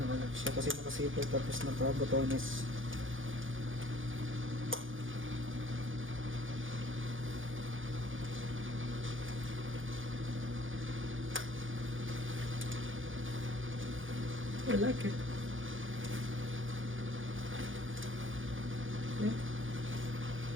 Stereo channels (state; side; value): late; left; 0.58 ms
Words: siya kasi naka-zipper tapos naka-botones. I like it. Yeah.